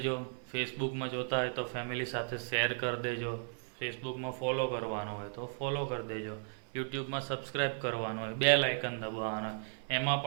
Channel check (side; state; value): left; silent; 54 dB below the other